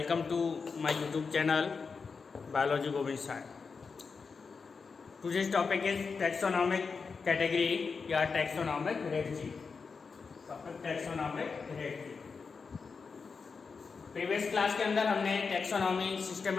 to my YouTube channel biology Govind Sai. Today's topic is taxonomic category या taxonomic hierarchy. Topic taxonomic hierarchy. Previous class के अंदर हमने taxonomy,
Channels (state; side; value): quieter; right; 5.1 dB